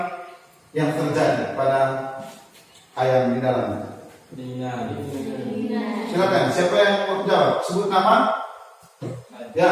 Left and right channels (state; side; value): identical; both; correlation 1.00